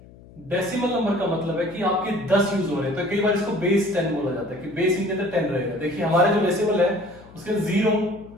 डेसिमल नंबर का मतलब है कि आपके 10 यूज हो रहे हैं, तो कई बार इसको बेस 10 बोला जाता है कि बेस इनके अंदर 10 रहेगा। देखिए, हमारे जो डेसिमल है उसके 0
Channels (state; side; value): noise; left; hum, 22 dB below the sound